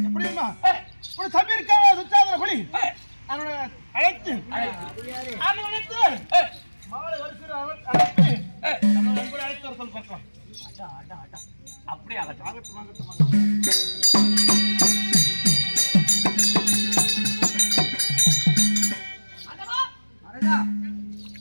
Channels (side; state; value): both; inverted; correlation -1.00